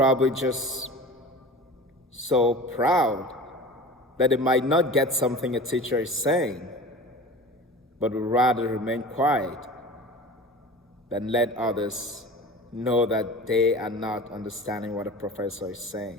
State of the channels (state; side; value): normal; both; correlation 0.37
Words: just so proud that they might not get something a teacher is saying, but would rather remain quiet than let others know that they are not understanding what a professor is